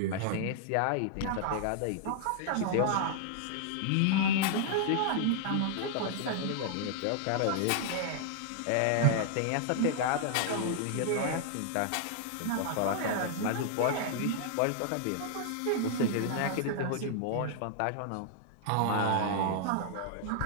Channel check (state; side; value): different; both; correlation -0.01